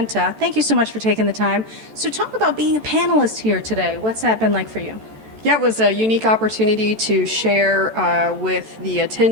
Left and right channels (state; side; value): late; left; 14 ms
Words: Thank you so much for taking the time. So talk about being a panelist here today. What's that been like for you? Yeah, it was a unique opportunity to share with the